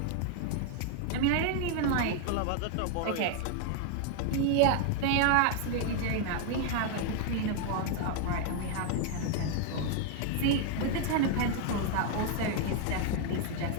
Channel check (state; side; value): different; both; correlation 0.00